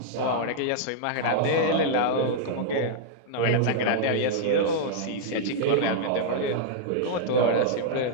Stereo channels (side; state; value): both; different; correlation -0.02